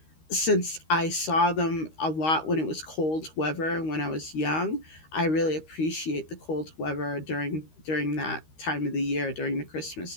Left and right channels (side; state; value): right; late; 13 ms